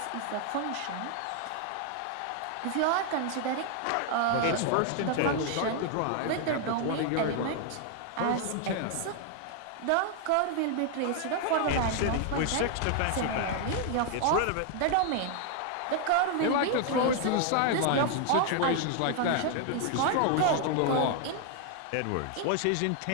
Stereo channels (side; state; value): both; different; correlation 0.00